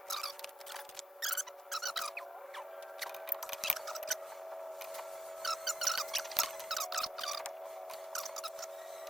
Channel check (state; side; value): normal; both; correlation 0.84